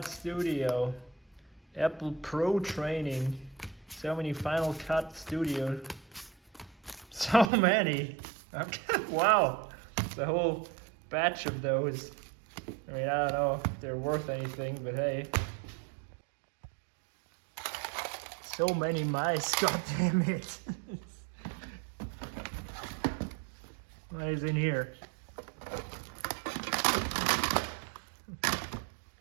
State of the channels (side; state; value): left; drops out; at 7.5 s